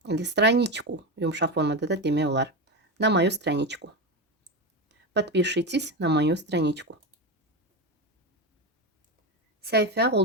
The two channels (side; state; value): both; normal; correlation 0.16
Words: Или страничку. Yumuşaq formada da demək olar. На мою страничку. Подпишитесь на мою страничку. Səhifə